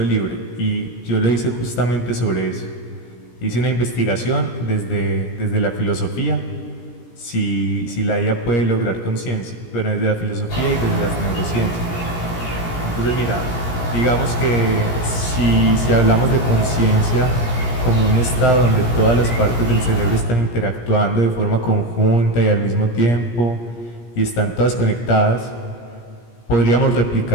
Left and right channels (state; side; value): late; right; 17 ms